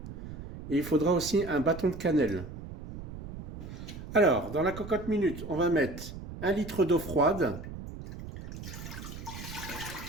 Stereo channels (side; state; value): right; noise; rumble, 11 dB below the sound